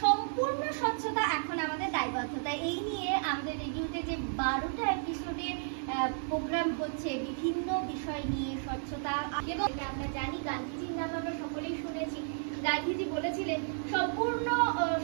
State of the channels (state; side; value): silent; left; digital silence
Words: সম্পূর্ণ স্বচ্ছতা এখন আমাদের দায়বদ্ধতা এই নিয়ে আমাদের রেডিওতে যে 12টা এপিসোডে প্রোগ্রাম হচ্ছে বিভিন্ন বিষয় নিয়ে স্বচ্ছতা এবং আমরা জানি গান্ধীজির নাম আমরা সকলেই শুনেছি। গান্ধীজি বলেছিলেন সম্পূর্ণ